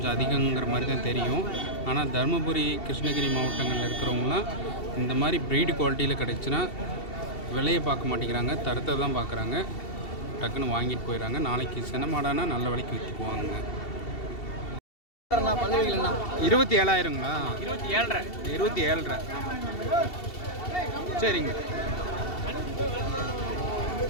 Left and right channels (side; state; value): right; late; 2.7 ms